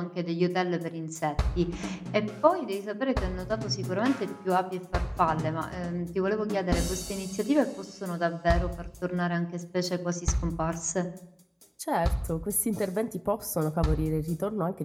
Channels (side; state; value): both; identical; correlation 1.00